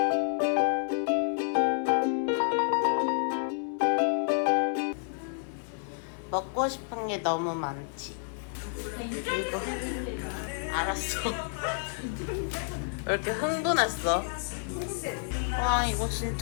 먹고 싶은 게 너무 많지. 이거 알았어. 왜 이렇게 흥분했어? 와 이거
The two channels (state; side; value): silent; right; 58 dB below the other